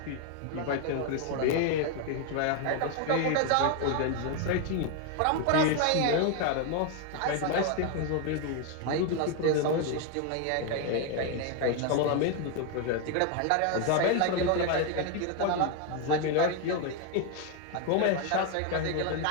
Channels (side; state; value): both; different; correlation 0.01